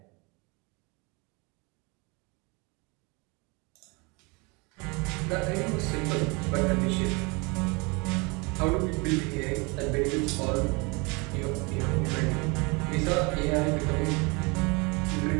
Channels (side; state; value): left; quieter; 28.6 dB